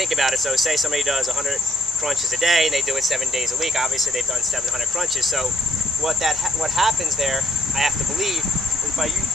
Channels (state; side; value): normal; both; correlation 0.69